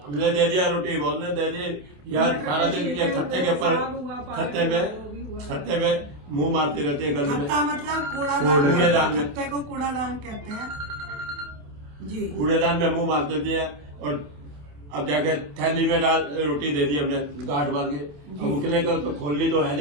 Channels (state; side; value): late; left; 27 ms